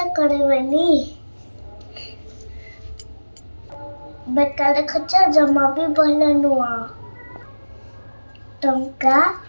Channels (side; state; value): both; inverted; correlation -1.00